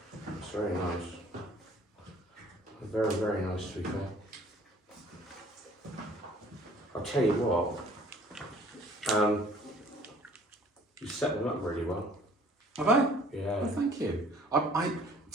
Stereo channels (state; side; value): normal; both; correlation 0.54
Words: It's very nice. Very, very nice, to be fair. I'll tell you what. You set them up really well. Have I? Yeah. Well, thank you.